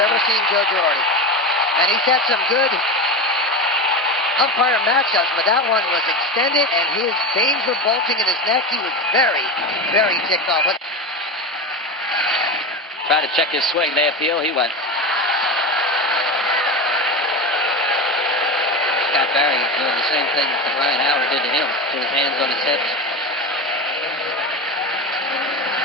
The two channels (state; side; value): normal; both; correlation 0.21